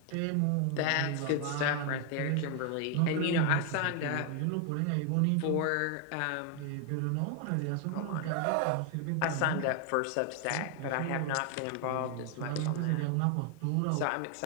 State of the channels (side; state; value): both; different; correlation 0.00